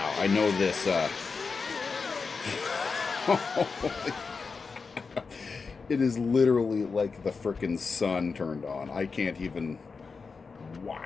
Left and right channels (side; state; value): right; quieter; 4.8 dB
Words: I know this. It is literally like the frickin' sun turned on. I can't even.